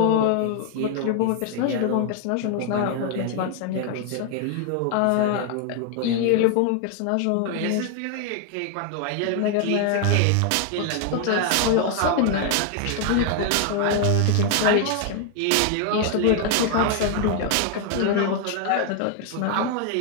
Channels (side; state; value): both; different; correlation 0.01